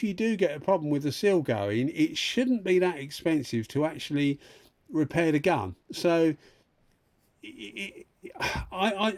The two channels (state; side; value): identical; both; correlation 1.00